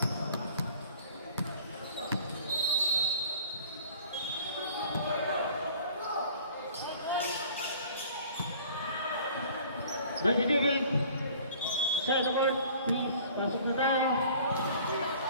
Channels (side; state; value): both; inverted; correlation -0.49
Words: Mighty David, side the board, please, pasok na tayo.